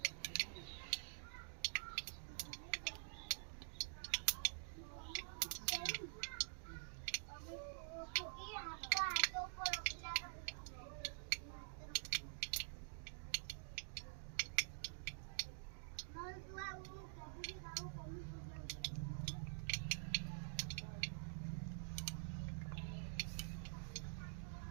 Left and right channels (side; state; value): left; silent; digital silence